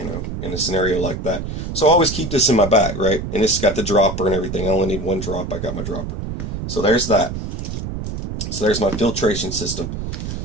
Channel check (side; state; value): right; noise; rumble, 6 dB below the sound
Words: a scenario like that. So I always keep this in my bag, right? And it's got the dropper and everything. I only need 1 drop. I got my dropper. So there's that. So there's my filtration system.